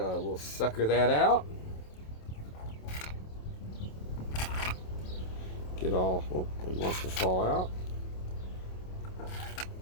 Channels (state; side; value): late; right; 27 ms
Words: sucker that out. Get all. Oh, it wants to fall out.